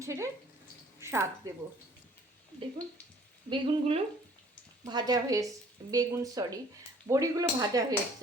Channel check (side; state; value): both; normal; correlation 0.55